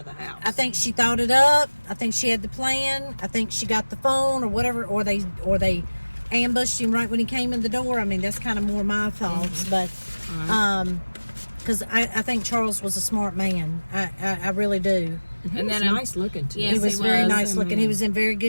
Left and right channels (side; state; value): both; inverted; correlation -1.00